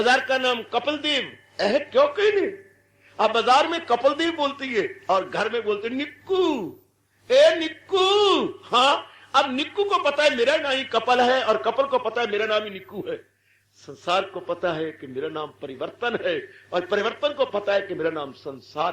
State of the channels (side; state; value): both; identical; correlation 1.00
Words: का नाम कपिल देव है। क्यों कहने? आप बाजार में कपिल देव बोलती है और घर में बोलते निक्कू। ए निक्कू। हाँ, अब निक्कू को पता है मेरा नाम ही कपिल है, और कपिल को पता है मेरा नाम ही निक्कू है। संसार को पता है कि मेरा नाम परिवर्तन है, और परिवर्तन को पता है कि मेरा नाम